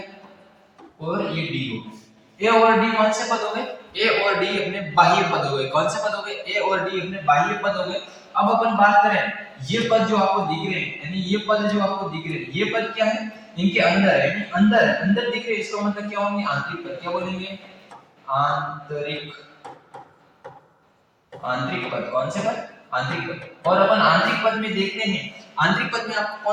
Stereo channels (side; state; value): both; identical; correlation 1.00